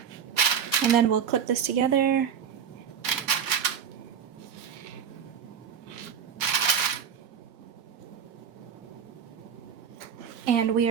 And then we'll clip this together. And we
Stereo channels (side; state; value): left; quieter; 7.8 dB